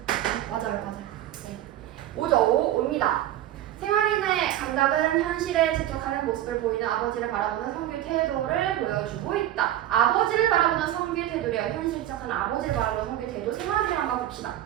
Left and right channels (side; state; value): left; quieter; 12.9 dB